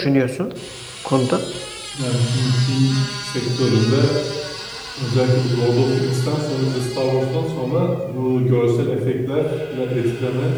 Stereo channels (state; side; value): identical; both; correlation 1.00